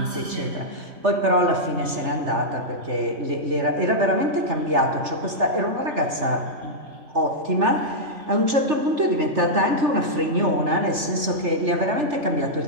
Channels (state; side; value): late; left; 3.4 ms